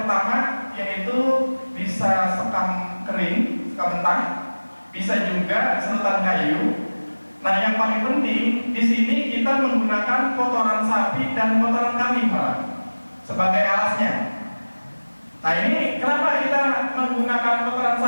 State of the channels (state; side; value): inverted; both; correlation -1.00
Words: yaitu bisa sekam kering, sekam mentah, bisa juga sedotan kayu. Nah yang paling penting di sini kita menggunakan kotoran sapi dan kotoran kambing malah sebagai alasnya. Nah ini kenapa kita menggunakan kotoran